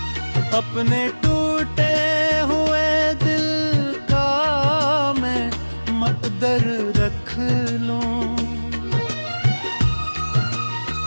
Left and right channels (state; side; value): inverted; both; correlation -1.00